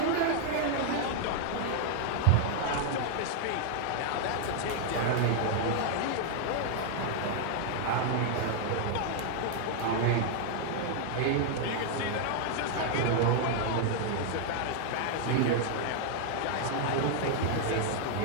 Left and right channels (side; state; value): both; different; correlation 0.00